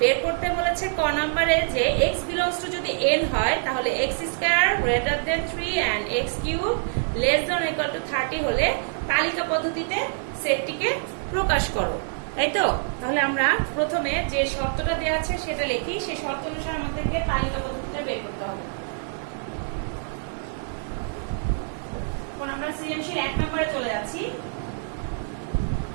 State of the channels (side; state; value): left; silent; 57 dB below the other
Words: করতে বলেছে ক নাম্বারে যে x বিলংস টু যদি n হয় তাহলে x square greater than 3 and x cube less than equal to 30 হলে তালিকা পদ্ধতিতে সেটটিকে প্রকাশ করো, তাই তো? তাহলে আমরা প্রথমে যে শর্তটা দেয়া আছে সেটা লিখি, সেই শর্ত অনুসারে আমাদেরকে তালিকা পদ্ধতিটা বের করতে হবে। এখন আমরা সৃজনশীল 1 নম্বরে চলে যাচ্ছি।